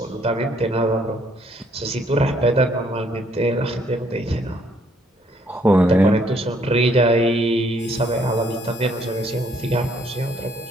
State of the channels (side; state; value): both; normal; correlation 0.67